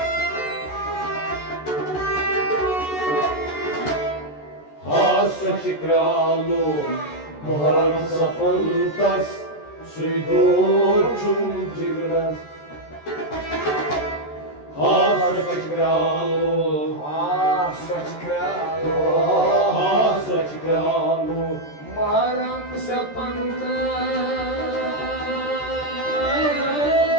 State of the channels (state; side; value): late; right; 13 ms